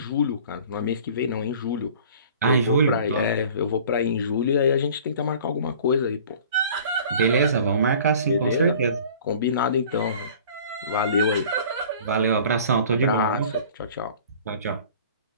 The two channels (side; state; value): both; inverted; correlation -0.47